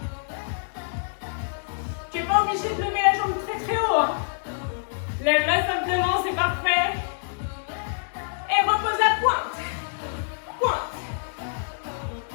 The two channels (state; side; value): silent; right; digital silence